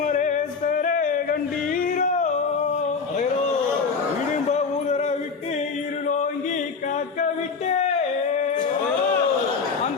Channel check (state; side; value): quieter; right; 5.1 dB